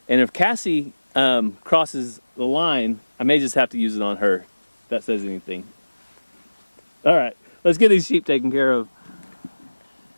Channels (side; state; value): both; inverted; correlation -1.00